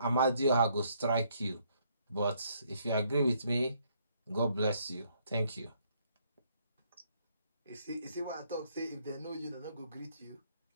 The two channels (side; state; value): both; inverted; correlation -0.69